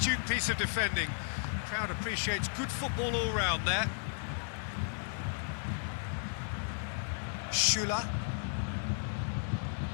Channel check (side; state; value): right; silent; 55 dB below the other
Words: piece of defending. Crowd appreciates good football all round there. Schüller.